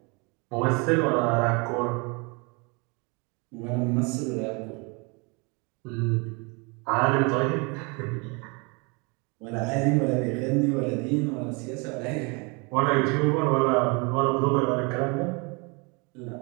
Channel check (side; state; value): left; quieter; 30.5 dB